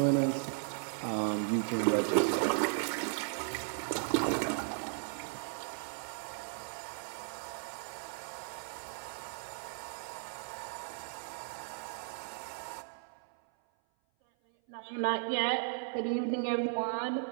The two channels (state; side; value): silent; left; 54 dB below the other